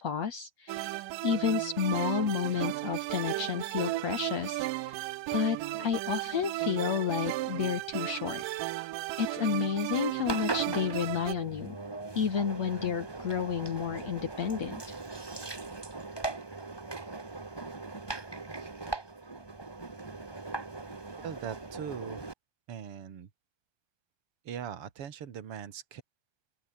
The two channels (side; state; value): left; late; 1.2 ms